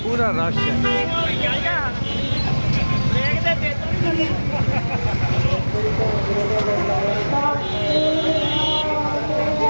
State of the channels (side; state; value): both; inverted; correlation -1.00